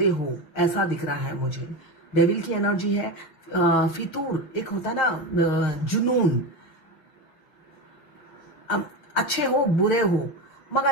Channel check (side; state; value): right; late; 6.5 ms